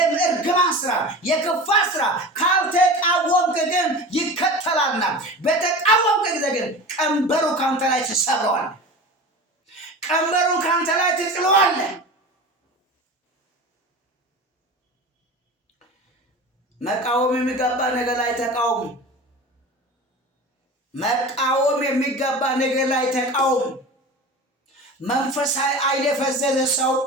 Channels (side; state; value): both; normal; correlation 0.33